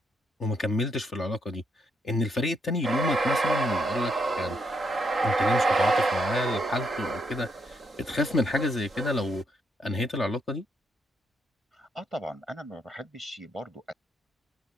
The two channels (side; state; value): both; normal; correlation 0.76